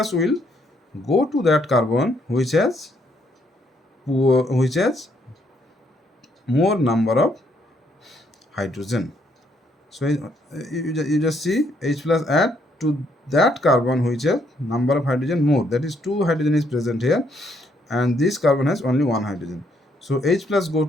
will go to that carbon which has more number of hydrogen. So you just see H plus add to that carbon which has number of hydrogen more, that is 2 hydrogen is present here, and this carbon has only 1 hydrogen. So H plus go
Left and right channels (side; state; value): both; normal; correlation 0.71